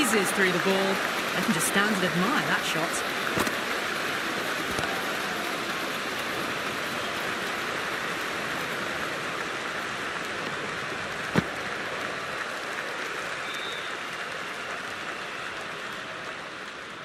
through the ball. I can just stand and admire that shot.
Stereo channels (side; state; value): both; identical; correlation 1.00